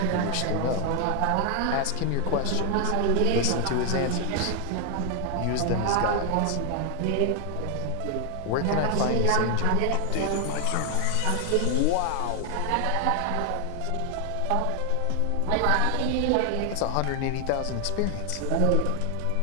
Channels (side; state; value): both; different; correlation 0.00